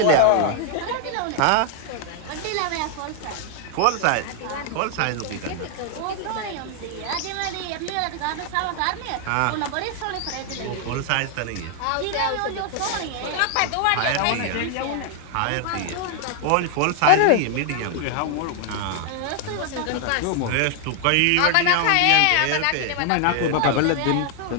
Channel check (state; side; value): different; both; correlation 0.00